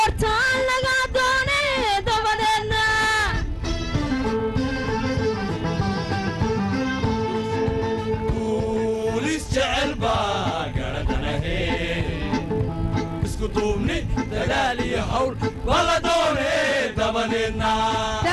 laga doone dabadeedna بوليس جعل باقردنا اسكو دومني دلالي هول ولا دوني دبنينا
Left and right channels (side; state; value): both; identical; correlation 1.00